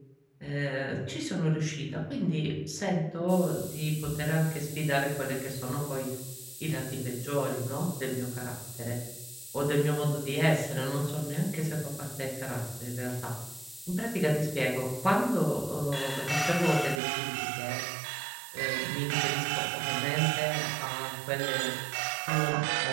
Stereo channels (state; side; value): drops out; left; at 17.0 s